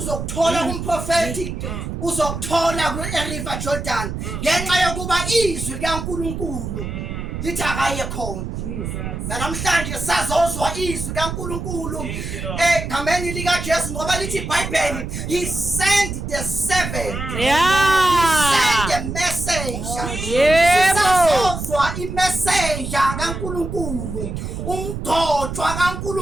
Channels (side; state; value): right; noise; rumble, 5 dB below the sound